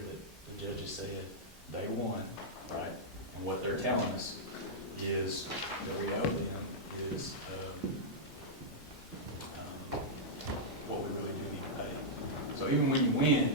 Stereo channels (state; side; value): normal; both; correlation -0.08